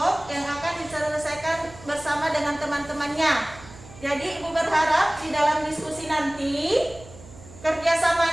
yang akan diselesaikan bersama dengan teman-temannya. Jadi Ibu berharap di dalam diskusi nanti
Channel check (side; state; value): right; noise; hum, 19 dB below the sound